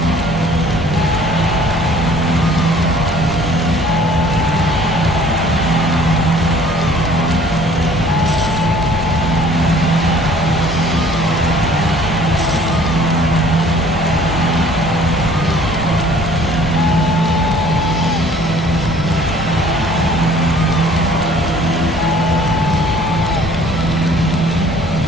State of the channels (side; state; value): both; normal; correlation 0.53